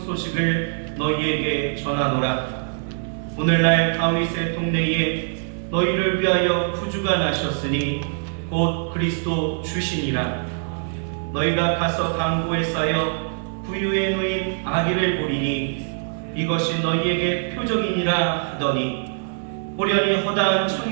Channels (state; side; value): silent; left; digital silence